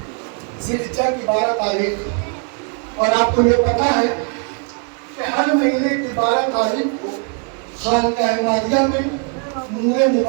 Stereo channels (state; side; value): quieter; left; 38.3 dB